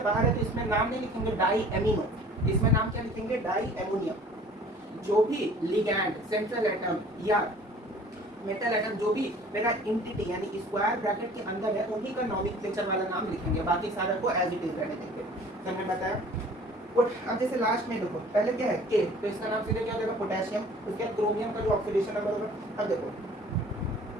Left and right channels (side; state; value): both; normal; correlation 0.49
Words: बाहर है तो इसमें नाम नहीं लिखेंगे डाई एमिनो, इसमें नाम क्या लिखेंगे, डाई एमोनियम। जो भी लिगैंड, सेंट्रल एटम या मेटल एटम जो भी मेरा एंटिटी यानी स्क्वायर ब्रैकेट के अंदर है उन्हीं का नॉमेनक्लेचर वाला नाम लिखेंगे, बाकी सारा को एज इट इज रहने देंगे। तो मैंने बताया। अब जैसे लास्ट में देखो, पहले क्या है के, तो इसका नाम सीधे क्या हो जाएगा, पोटेशियम। उसके बाद क्रोमियम का जो ऑक्सीडेशन नंबर होगा, अब देखो